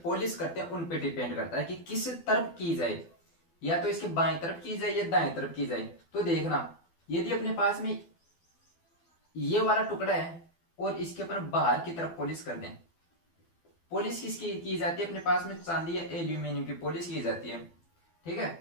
पॉलिश करते हैं उन पे डिपेंड करता है कि किस तरफ की जाए, या तो इसके बाएं तरफ की जाए या दाएं तरफ की जाए। तो देखना यदि अपने पास में ये वाला टुकड़ा है और इसके अपन बाहर की तरफ पॉलिश कर दें, पॉलिश किसकी की जाती है, अपने पास में चांदी या एल्यूमिनियम की पॉलिश की जाती है। ठीक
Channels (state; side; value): late; right; 12 ms